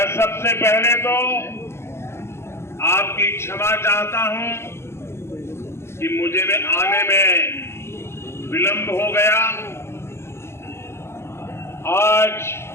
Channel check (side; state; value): right; late; 0.12 ms